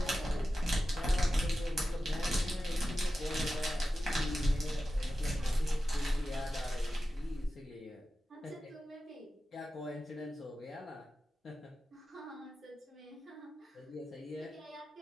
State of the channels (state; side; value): normal; both; correlation 0.93